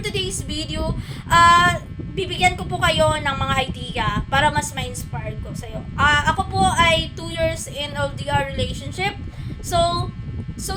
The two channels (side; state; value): both; identical; correlation 1.00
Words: video, bibigyan ko po kayo ng mga idea para mas ma-inspire ko sa iyo. Ako po ay 2 years in LDR relationship. So